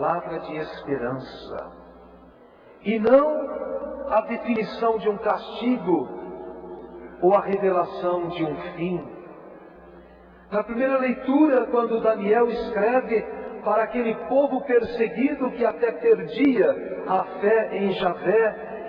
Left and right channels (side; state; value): both; identical; correlation 1.00